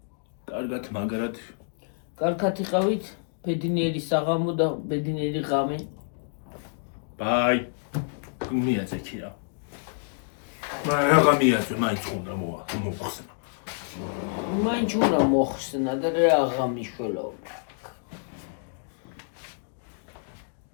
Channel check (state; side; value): silent; right; digital silence